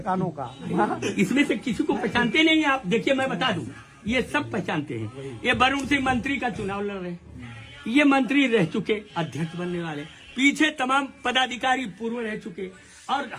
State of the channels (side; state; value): both; identical; correlation 1.00